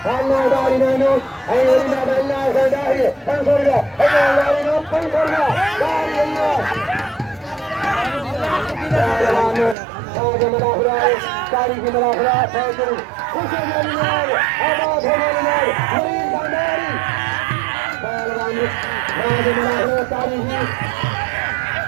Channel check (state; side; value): drops out; left; at 9.8 s